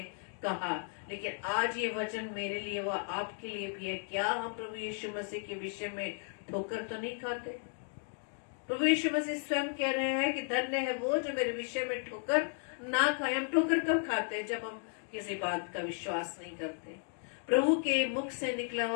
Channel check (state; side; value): silent; right; 55 dB below the other